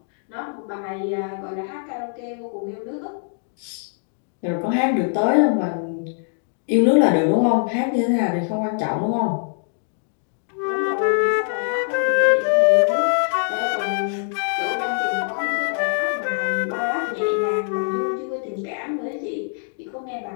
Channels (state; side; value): silent; right; digital silence